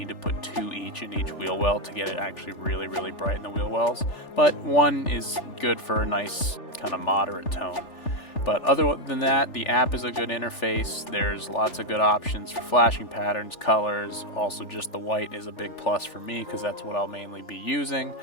to put 2 each in each wheel well to get it actually really, really bright in the wheel wells. But one is good for a nice kind of moderate tone. But other than that, the app is a good interface. There's lots of good options for flashing patterns, colors. Also, just the white is a big plus for me because that's what I'll mainly be using.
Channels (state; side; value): late; right; 3.4 ms